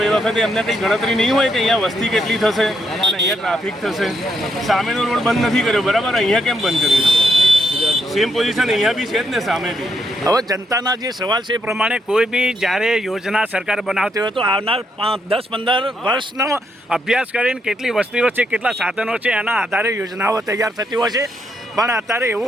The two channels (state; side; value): normal; both; correlation 0.77